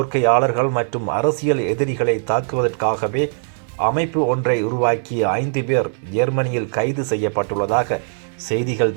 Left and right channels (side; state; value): left; silent; 55 dB below the other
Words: மற்றும் அரசியல் எதிரிகளை தாக்குவதற்காகவே அமைப்பு ஒன்றை உருவாக்கிய 5 பேர் ஜெர்மனியில் கைது செய்யப்பட்டுள்ளதாக செய்திகள்